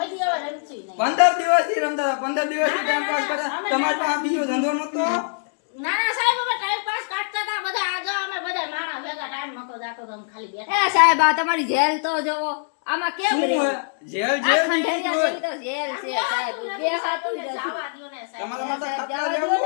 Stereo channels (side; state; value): right; silent; 63 dB below the other